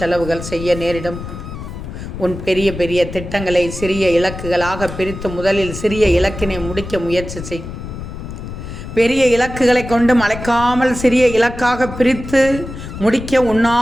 செய்ய நேரிடும். உன் பெரிய பெரிய திட்டங்களை சிறிய இலக்குகளாக பிரித்து முதலில் சிறிய இலக்கினை முடிக்க முயற்சி செய். பெரிய இலக்குகளை கொண்டு மலைக்காமல் சிறிய இலக்காக பிரித்து முடிக்க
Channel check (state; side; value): noise; left; rumble, 10 dB below the sound